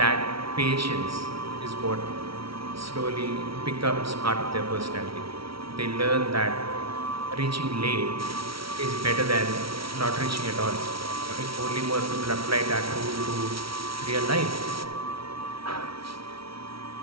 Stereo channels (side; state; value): left; late; 0.75 ms